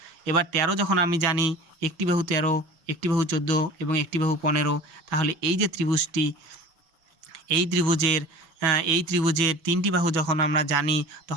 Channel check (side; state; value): left; late; 6.3 ms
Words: এবার 13 যখন আমি জানি, একটি বাহু 13, একটি বাহু 14 এবং একটি বাহু 15, তাহলে এই যে ত্রিভুজটি, এই ত্রিভুজের 3টি বাহু যখন আমরা জানি,